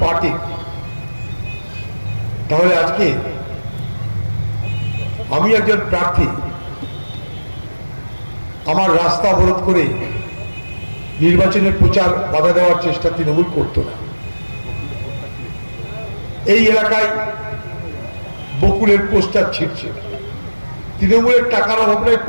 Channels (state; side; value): inverted; both; correlation -1.00